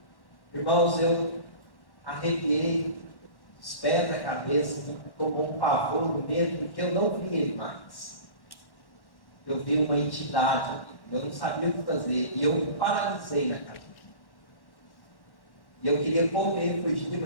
irmãos, eu arrepiei os pés da cabeça, tomou um pavor, um medo, porque eu não vi ele mais. Eu vi uma entidade, eu não sabia o que fazer, e eu me paralisei na cabeça. E eu queria correr, fugir,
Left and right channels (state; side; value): late; right; 1.1 ms